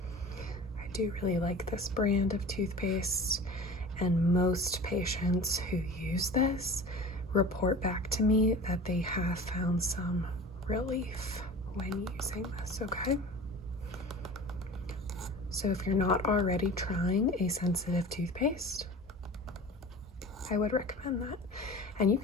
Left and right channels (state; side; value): normal; both; correlation 0.38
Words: I do really like this brand of toothpaste, and most patients who use this report back to me that they have found some relief when using this, okay? So if you're not already trying a sensitive toothpaste, I would recommend that. And you